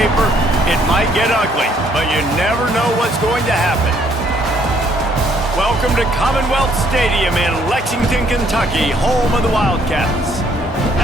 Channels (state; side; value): normal; both; correlation 0.65